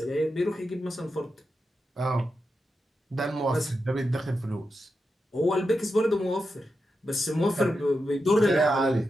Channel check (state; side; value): normal; both; correlation 0.88